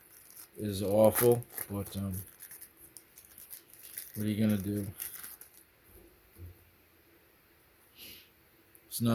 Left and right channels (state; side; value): identical; both; correlation 1.00